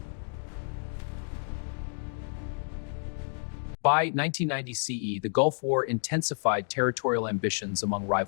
By 1990 CE, the Gulf War intensified territorial ambitions among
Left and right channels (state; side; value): silent; right; digital silence